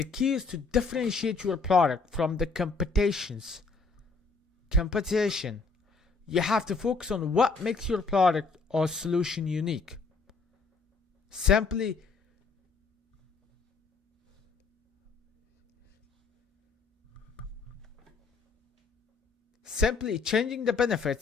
key is to differentiate your product from the competition. You have to focus on what makes your product or solution unique. Simply changing the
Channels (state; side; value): quieter; right; 4.4 dB